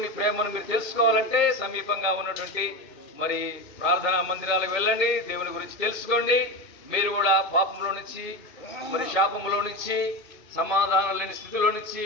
ప్రేమను మీరు తెలుసుకోవాలంటే సమీపంగా ఉన్నటువంటి మరి ప్రార్థనా మందిరాలకు వెళ్ళండి, దేవుని గురించి తెలుసుకోండి. మీరు కూడా పాపంలో నుంచి మరి శాపంలో నుంచి సమాధానం లేని స్థితిలో నుంచి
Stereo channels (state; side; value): late; right; 1.9 ms